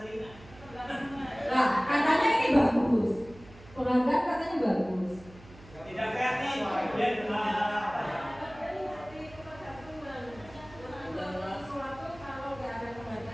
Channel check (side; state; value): right; noise; hum, 21 dB below the sound